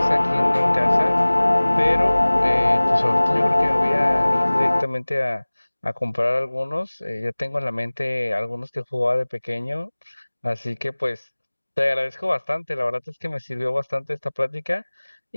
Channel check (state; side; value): inverted; both; correlation -1.00